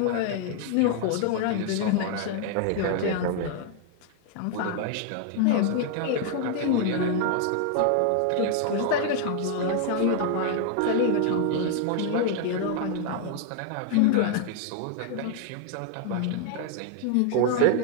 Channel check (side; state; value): both; different; correlation 0.00